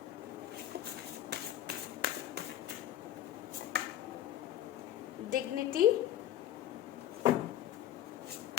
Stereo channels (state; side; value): quieter; right; 12.1 dB